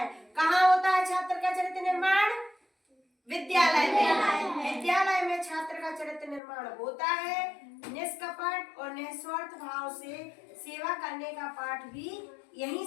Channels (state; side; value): drops out; right; at 6.4 s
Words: कहाँ होता है छात्र का चरित्र निर्माण? विद्यालय में। विद्यालय में छात्र का चरित्र निर्माण होता है। निष्कपट और निस्वार्थ भाव से सेवा करने का पाठ भी यहीं